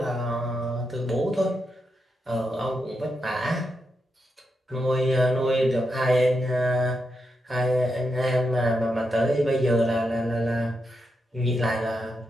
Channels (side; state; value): both; normal; correlation 0.84